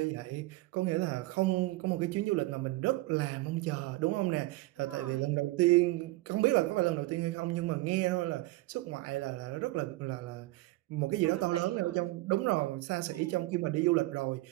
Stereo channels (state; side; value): quieter; left; 19.5 dB